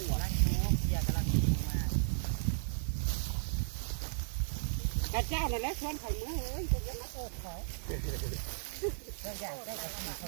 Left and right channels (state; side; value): silent; left; 54 dB below the other